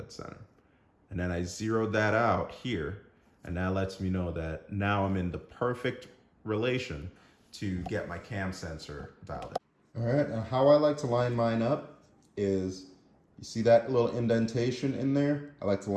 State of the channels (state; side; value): identical; both; correlation 1.00